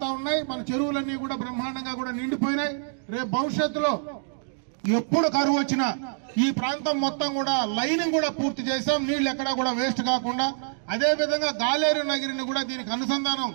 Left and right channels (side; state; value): left; silent; digital silence